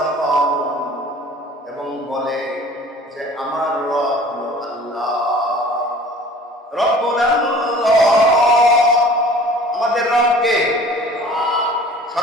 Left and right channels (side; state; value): both; normal; correlation 0.47